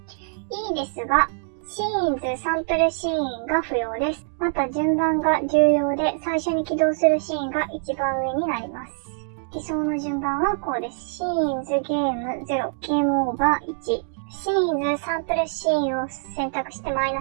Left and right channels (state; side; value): silent; left; digital silence